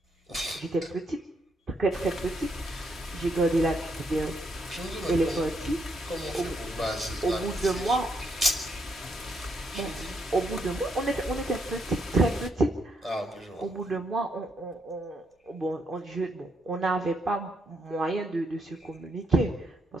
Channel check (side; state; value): both; normal; correlation 0.76